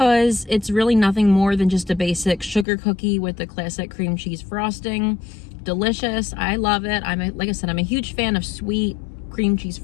it's really nothing more than just a basic sugar cookie with the classic cream cheese frosting. Delicious. I love it. Like I said, I'm a huge fan of sweet cream cheese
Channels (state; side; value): drops out; right; at 2.7 s